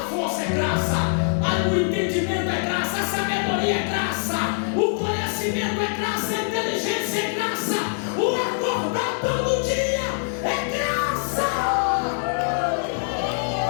força é graça, o entendimento é graça, a sabedoria é graça, o conhecimento é graça, a inteligência é graça, o acordar todo dia é graça.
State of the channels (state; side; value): silent; right; digital silence